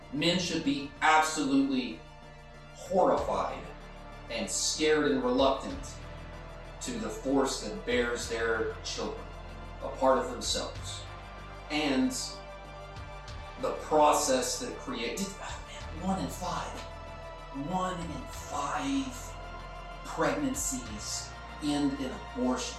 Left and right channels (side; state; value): both; identical; correlation 1.00